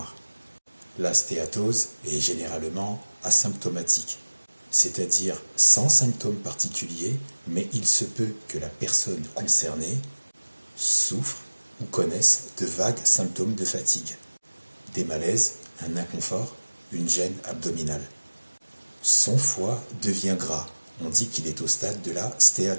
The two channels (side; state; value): both; inverted; correlation -1.00